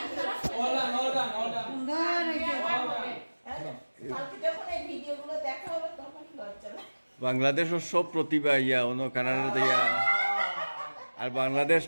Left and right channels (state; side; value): inverted; both; correlation -1.00